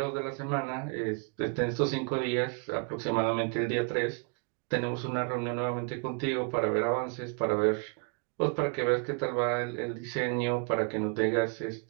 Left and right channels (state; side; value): quieter; left; 34.4 dB